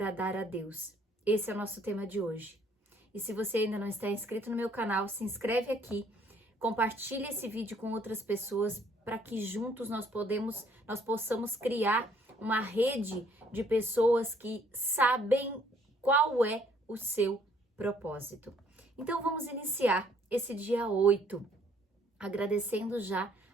a Deus. Esse é o nosso tema de hoje. E se você ainda não está inscrito no meu canal, se inscreve aqui, compartilhe esse vídeo com outras pessoas para que juntos nós possamos criar uma rede de pessoas que sabem qual é o seu propósito. Então vamos iniciar esse dia 8, agradecendo já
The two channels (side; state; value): both; normal; correlation 0.63